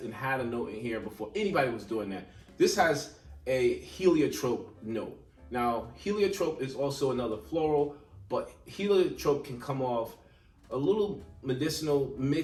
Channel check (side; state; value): both; identical; correlation 1.00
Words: and had a note in here before anybody was doing that. This has a heliotrope note. Now, heliotrope is also another floral, but heliotrope can come off a little medicinal